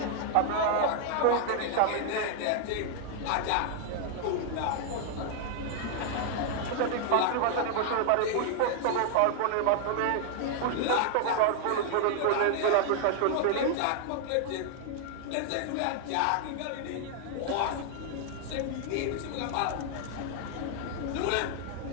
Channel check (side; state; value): both; different; correlation 0.00